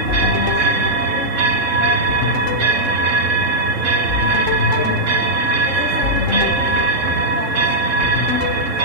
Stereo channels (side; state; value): left; late; 3.6 ms